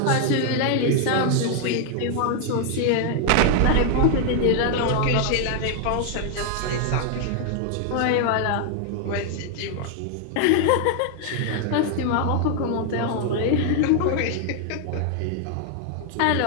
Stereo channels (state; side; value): different; both; correlation 0.00